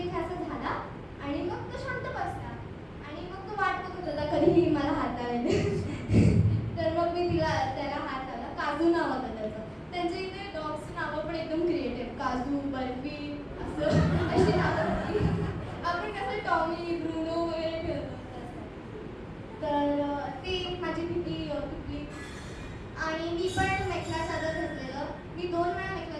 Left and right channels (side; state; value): both; identical; correlation 1.00